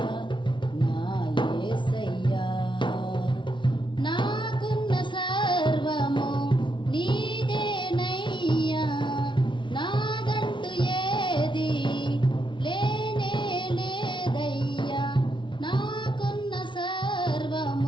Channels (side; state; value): right; late; 0.24 ms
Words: నా యేసయ్యా. నాకున్న సర్వము నీదేనయ్యా, నాదంటూ ఏది లేనే లేదయ్యా. నాకున్న